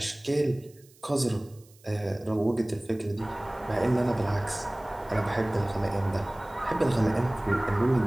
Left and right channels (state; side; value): noise; right; hiss, 28 dB below the sound